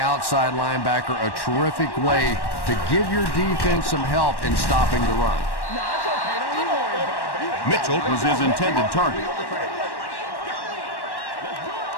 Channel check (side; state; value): right; late; 1.1 ms